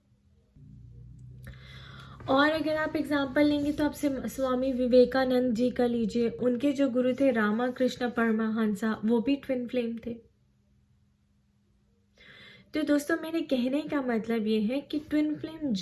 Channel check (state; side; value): identical; both; correlation 1.00